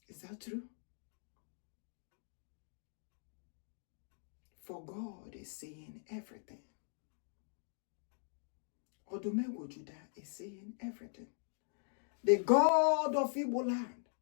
Is that true? For God is seeing everything. Odumegwu Judah is seeing everything. The God of Igbo land.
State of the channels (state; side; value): silent; right; digital silence